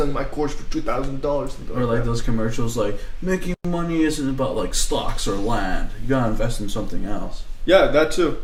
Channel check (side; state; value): both; identical; correlation 1.00